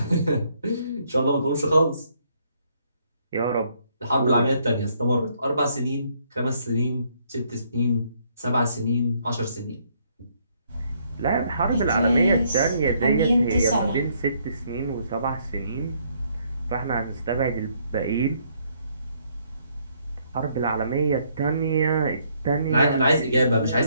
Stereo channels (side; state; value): both; inverted; correlation -0.69